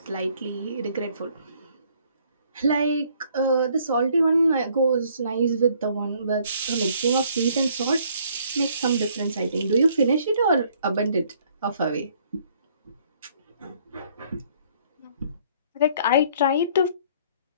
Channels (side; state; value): both; inverted; correlation -0.62